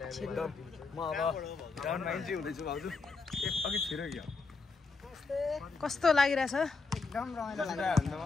म अब ग्राउन्डमा इन्ट्री हुँदैछु भाउजू अघि छिरो क्या कस्तो लागिरहेछ? एकदम रमाइलो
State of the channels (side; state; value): right; quieter; 4.2 dB